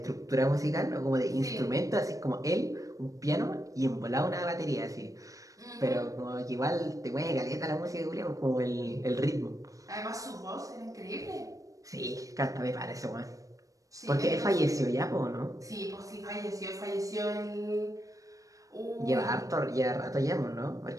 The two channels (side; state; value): left; late; 0.16 ms